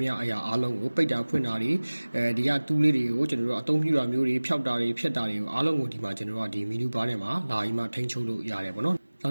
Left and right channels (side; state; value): both; inverted; correlation -1.00